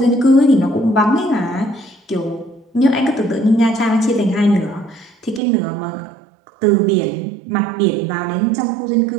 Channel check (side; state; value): left; drops out; at 5.4 s